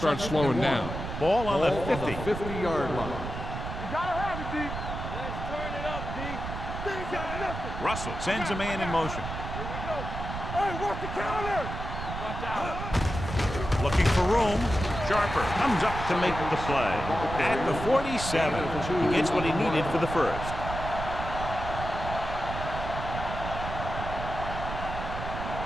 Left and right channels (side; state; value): right; noise; rumble, 6 dB below the sound